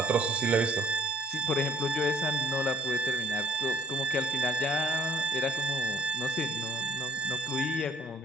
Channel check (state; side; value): normal; both; correlation 0.57